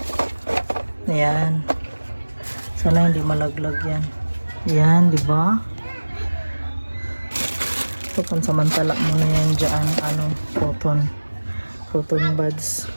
Ayan. Sana hindi malaglag yan. Ayan, diba? Ito, pansamantala muna yan dyan, cotton buds.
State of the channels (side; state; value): both; inverted; correlation -1.00